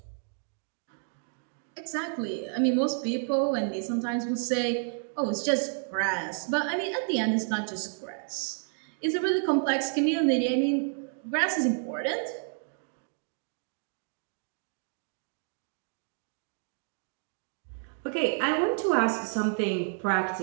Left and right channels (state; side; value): silent; left; 58 dB below the other